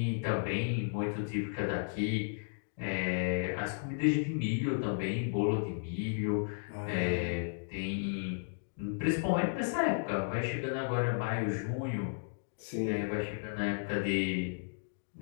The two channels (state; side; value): silent; right; digital silence